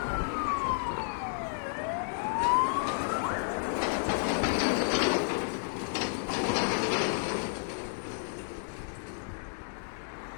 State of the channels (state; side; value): silent; right; digital silence